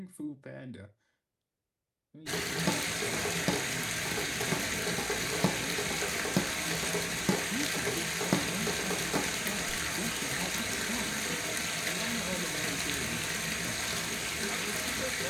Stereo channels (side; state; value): both; identical; correlation 1.00